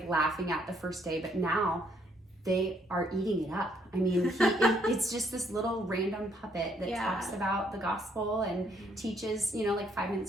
at the first day, but now they are eating it up. It's just this little random puppet that talks about the gospel and teaches, 5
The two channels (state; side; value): normal; both; correlation 0.69